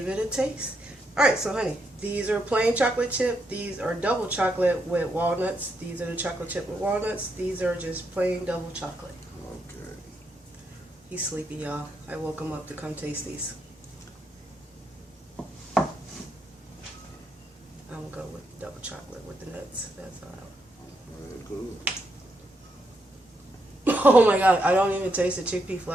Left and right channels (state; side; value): normal; both; correlation 0.80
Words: it a taste. Alright, so honey, these are plain chocolate chip. These are double chocolate with walnuts. These are the chocolate chip with walnuts. These are just plain double chocolate. Okay. He's sleepy, y'all. I woke him up to come taste these. I'm gonna go with double chocolate with the nuts. That's all. Very good. Oh my god, I don't even taste the chickpea